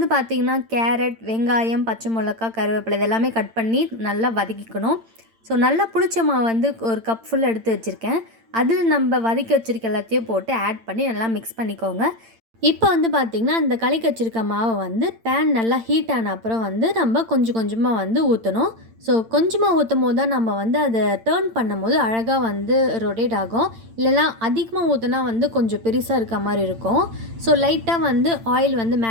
பார்த்திங்கன்னா கேரட், வெங்காயம், பச்சை மிளகா, கருவேப்பிலை இதெல்லாமே கட் பண்ணி நல்லா வதக்கிக்கணும். ஸோ நல்லா புளிச்ச மாவு வந்து ஒரு கப் ஃபுல் எடுத்து வச்சுருக்கேன். அதில் நம்ம வதக்கி வச்சுருக்க எல்லாத்தையும் போட்டு ஆட் பண்ணி நல்லா மிக்ஸ் பண்ணிக்கோங்க. இப்போ வந்து பார்த்திங்கன்னா அந்த கலக்கி வச்சுருக்க மாவை வந்து பேன் நல்லா ஹீட் ஆன அப்புறம் வந்து நம்ம கொஞ்சம் கொஞ்சமாக வந்து ஊற்றணும். ஸோ கொஞ்சமாக ஊற்றும் போது தான் நம்ம வந்து அதை டேர்ன் பண்ணும்போது அழகாக வந்து ரொட்டேட் ஆகும். இல்லைனா அதிகமாக ஊற்றினா வந்து கொஞ்சம் பெருசாக இருக்க மாதிரி இருக்கும். ஸோ லைட்டாக வந்து ஆயில் வந்து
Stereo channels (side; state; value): left; late; 8.8 ms